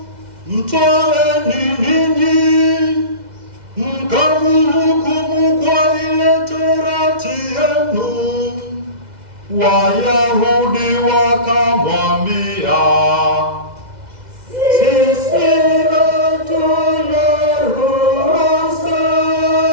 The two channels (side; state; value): left; late; 2.0 ms